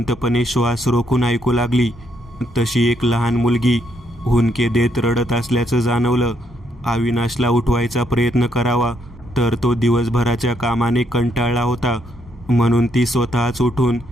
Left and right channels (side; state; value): both; normal; correlation 0.74